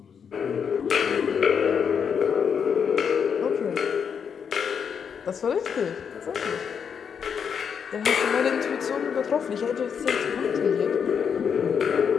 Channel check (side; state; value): right; quieter; 7.0 dB